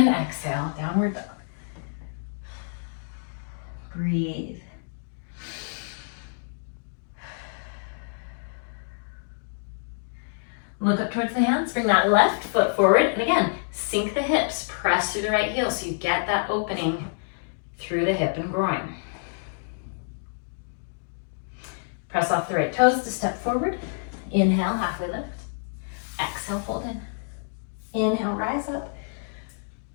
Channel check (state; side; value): silent; right; digital silence